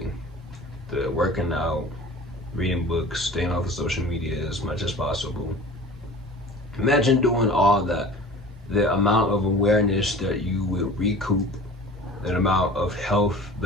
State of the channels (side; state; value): both; normal; correlation 0.42